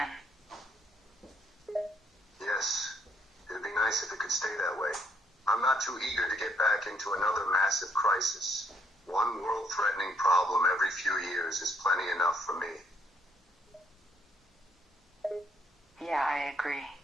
Yes, it'd be nice if it could stay that way. I'm not too eager to get back into another massive crisis. One world-threatening problem every few years is plenty enough for me. Yeah, I agree.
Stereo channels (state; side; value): normal; both; correlation 0.70